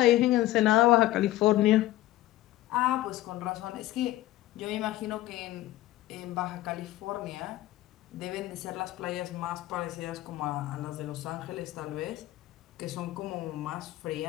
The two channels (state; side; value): quieter; right; 15.7 dB